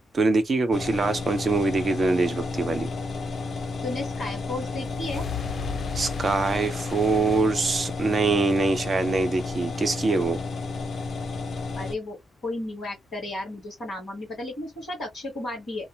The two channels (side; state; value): both; normal; correlation 0.80